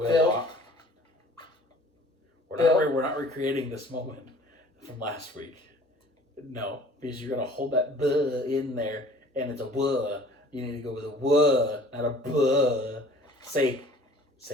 We're not recreating this moment from last week. No, because you're going to hold that buh in there, and it's a wuh. You need to go with a wuh, not a buh. Say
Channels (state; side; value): normal; both; correlation 0.50